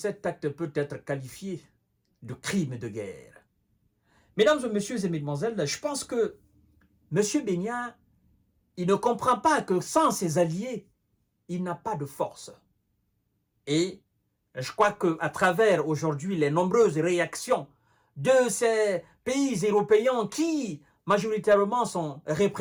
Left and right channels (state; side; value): identical; both; correlation 1.00